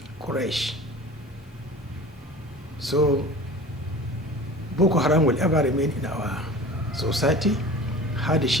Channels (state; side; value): normal; both; correlation 0.39